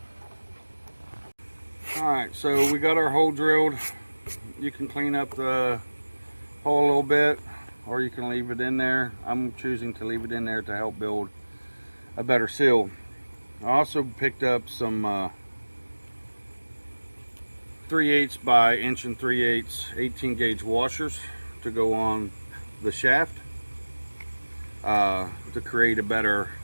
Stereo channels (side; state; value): both; inverted; correlation -1.00